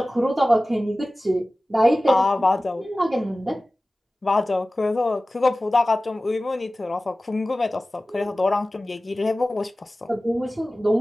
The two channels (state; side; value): normal; both; correlation 0.97